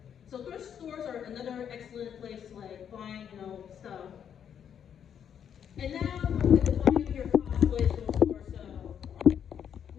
So thrift stores are another excellent place to like find stuff. And now we're defining your cosplays from the store. So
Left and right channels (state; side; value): quieter; right; 8.5 dB